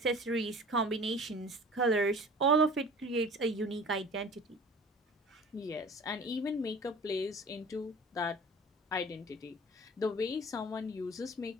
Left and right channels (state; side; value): normal; both; correlation 0.43